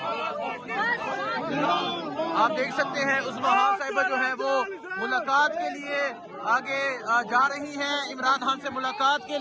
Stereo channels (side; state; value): both; identical; correlation 1.00